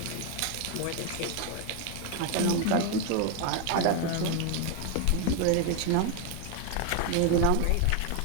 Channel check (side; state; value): both; different; correlation 0.00